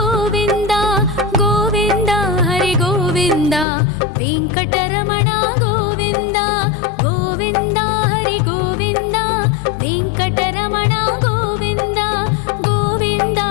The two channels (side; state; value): right; drops out; at 3.7 s